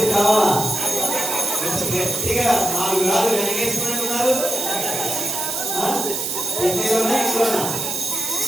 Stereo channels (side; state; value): right; noise; hiss, 3 dB below the sound